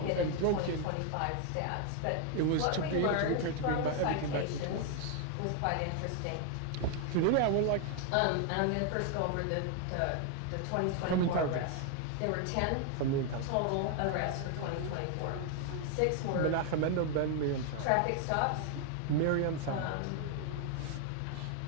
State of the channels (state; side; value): different; both; correlation 0.00